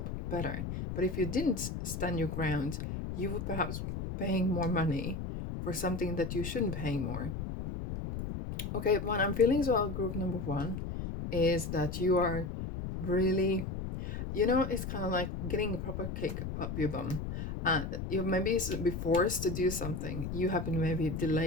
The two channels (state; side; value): noise; left; rumble, 5 dB below the sound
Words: better. But if you didn't stand your ground, you would perhaps paying more money for something that you shouldn't pay more. Okay, what I'm feeling as well, group number one, is that you are really, you know, it's kind of like getting a proper kick up your bum. You maybe be forced to do something. You have been maybe